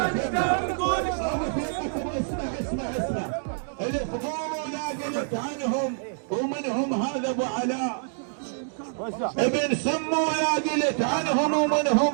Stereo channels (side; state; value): left; silent; digital silence